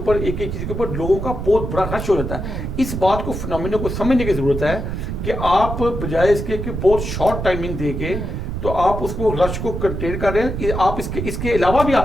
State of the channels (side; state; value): right; noise; rumble, 4 dB below the sound